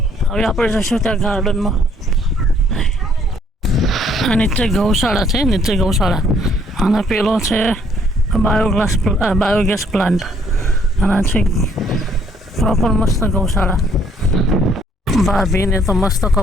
હવે આપણે જઈશું ત્યાં ગાર્ડનમાં આ નીચે ગૌશાળા છે અને પેલો છે બાયોગેસ પ્લાન્ટ અને છે પ્રોપર મસ્ત ગૌશાળા ભાભીને તો મસ્ત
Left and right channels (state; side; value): normal; both; correlation 0.64